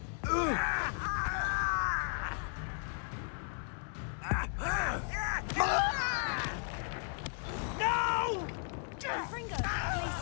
All little magic tricks won't distract me. No! Confringo!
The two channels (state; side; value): silent; right; 54 dB below the other